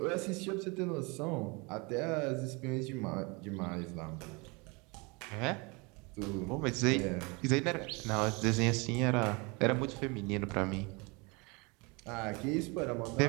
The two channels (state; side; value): quieter; left; 28.4 dB